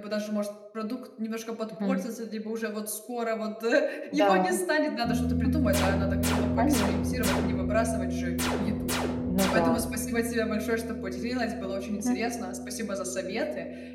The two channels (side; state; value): both; identical; correlation 1.00